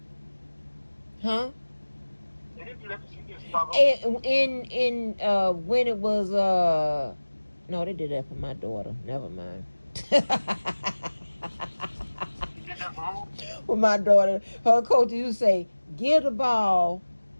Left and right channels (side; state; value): both; inverted; correlation -1.00